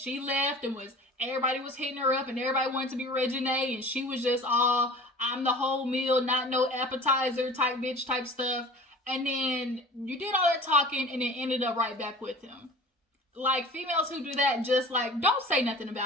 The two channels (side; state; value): both; normal; correlation 0.42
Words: left and everybody was hitting her up and everybody wanted to be Reginae, and she was just all, I'm the whole meal, not no appetizer type bitch type stuff. And then you did all that talking and then ended up right back with him. Like, females who do that, just like, don't say nothing